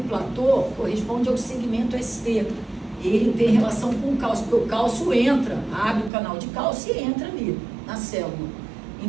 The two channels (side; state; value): left; drops out; at 6.1 s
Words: platô corresponde ao segmento ST. Ele tem relação com o cálcio, porque o cálcio entra, abre o canal de cálcio e entra ali na célula.